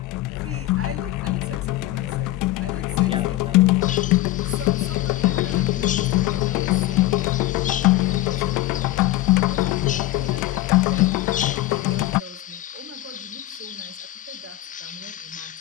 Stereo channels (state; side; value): quieter; right; 16.0 dB